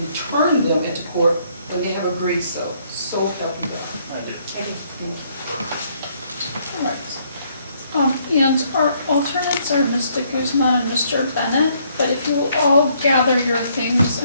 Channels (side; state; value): both; inverted; correlation -0.68